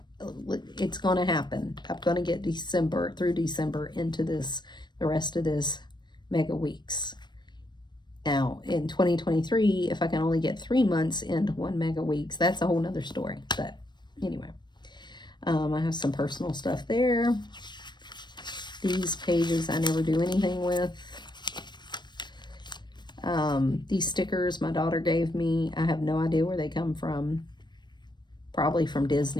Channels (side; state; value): right; late; 0.22 ms